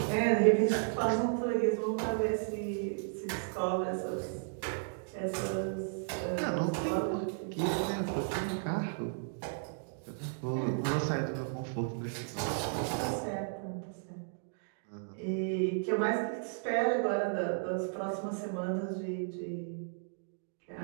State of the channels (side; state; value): left; silent; digital silence